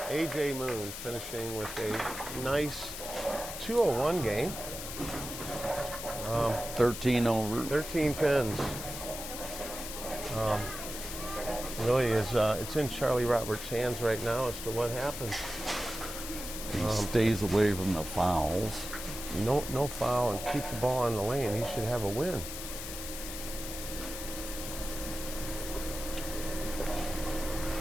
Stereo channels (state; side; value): noise; left; hiss, 8 dB below the sound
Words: AJ Moon finishing with a nice 201 game. 13 over. 13 pins. Really is, it's in Charlie Roberts' hands right now as to what happens. He stays away from the fouls. No foul and keep the ball on the lane. He should have a win.